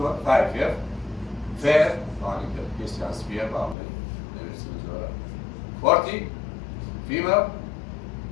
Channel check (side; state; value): right; drops out; at 3.8 s